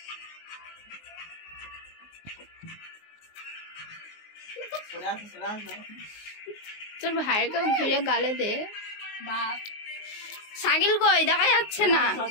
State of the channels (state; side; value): late; right; 19 ms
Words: তোর ভাইকে ঘুরে গালে দে। সাকিল কই, দেখা যাচ্ছে না।